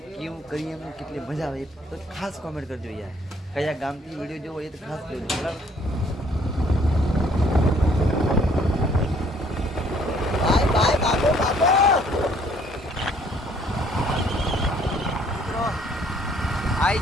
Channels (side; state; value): both; normal; correlation 0.62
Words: કેવું કરીએ એમને કેટલી મજા આવે એ તો ખાસ કોમેન્ટ કરજો યાર. કયા ગામથી વિડીયો જોવો એ તો ખાસ જોજો, બરાબર? ભાઈ